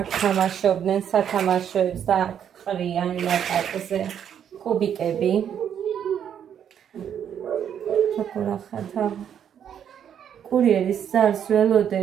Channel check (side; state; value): left; quieter; 8.9 dB